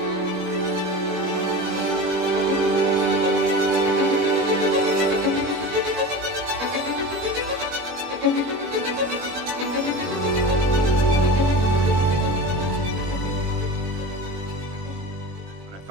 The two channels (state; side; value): late; left; 21 ms